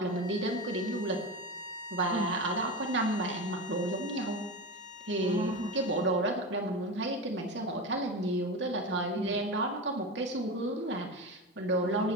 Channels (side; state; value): both; normal; correlation 0.23